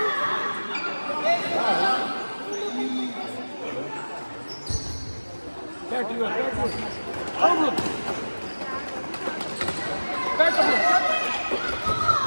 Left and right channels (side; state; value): both; inverted; correlation -1.00